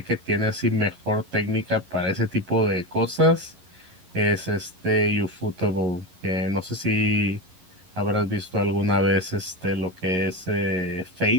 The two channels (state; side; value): late; left; 11 ms